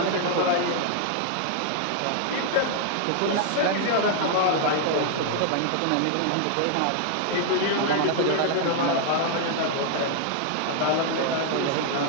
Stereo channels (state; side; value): different; both; correlation 0.00